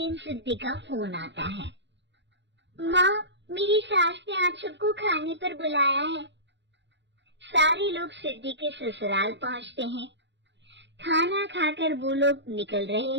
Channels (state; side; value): late; left; 0.52 ms